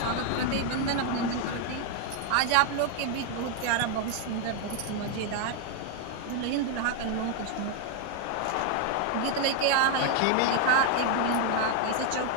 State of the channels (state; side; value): different; both; correlation 0.00